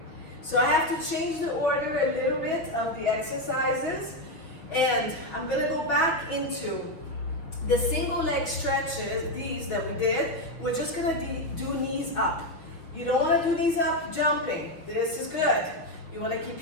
So I have to change the order a little bit of the exercises, and I'm gonna go back into the single leg stretches, these that we did. We're just gonna do knees up. You don't wanna do knees up jumping. This is good. You wanna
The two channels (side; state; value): right; late; 6.4 ms